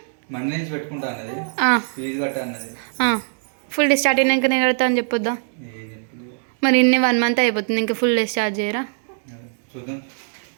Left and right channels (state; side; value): silent; left; 64 dB below the other